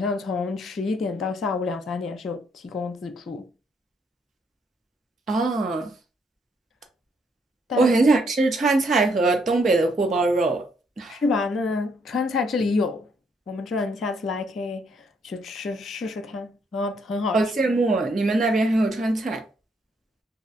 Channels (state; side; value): normal; both; correlation 0.72